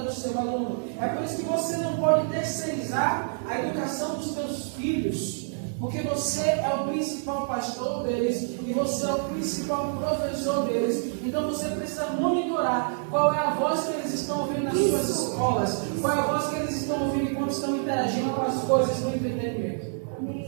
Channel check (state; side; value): silent; left; digital silence